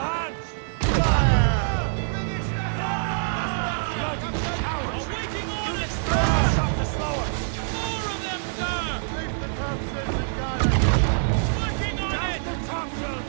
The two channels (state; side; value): silent; left; digital silence